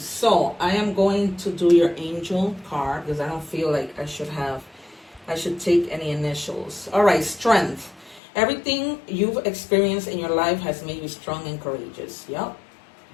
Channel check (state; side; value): drops out; right; at 8.2 s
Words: I am going to do your angel card because I don't feel like I should take any initials. Alright, strength. Everything you've experienced in your life has made you strong and courageous. Yep.